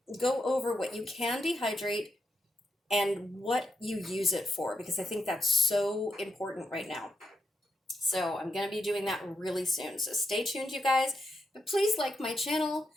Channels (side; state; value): both; normal; correlation 0.83